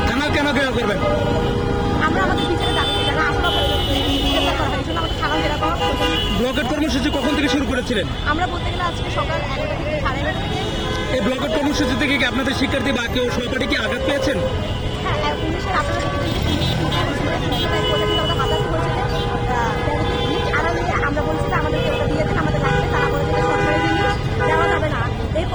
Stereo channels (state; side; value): identical; both; correlation 1.00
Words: থানা কেন ঘেরাও করবেন? আমরা আমাদের বিচারে দাবি যারা আসলে বিচার করা হয় এই জন্য আমাদের থানা ঘেরাও করা প্রয়োজন। ব্লকের কর্মসূচি কখন থেকে শুরু করেছিলেন? আমরা বলতে গেলে আজকে সকাল 11টা থেকে 11:30 থেকে। এই ব্লকের কর্মসূচি থেকে কি আপনাদের শিক্ষার্থী বা কেউ সহপাঠী কি আঘাত পেয়েছেন? হ্যাঁ, পুলিশের আপনারা আমরা বলছি যে আমাদের একটা দিয়ে দেন, আমাদের লাগবে। তারা বলেছে যে সরকারি জিনিস দেওয়া যাবে না। এই